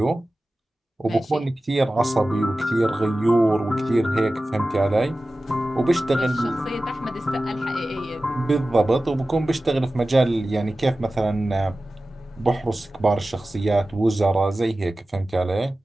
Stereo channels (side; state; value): both; normal; correlation 0.96